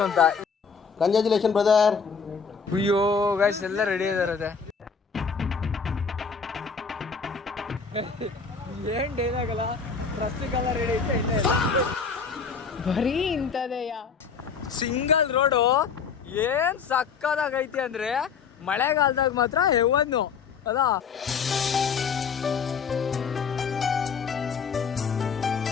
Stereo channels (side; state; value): right; quieter; 5.7 dB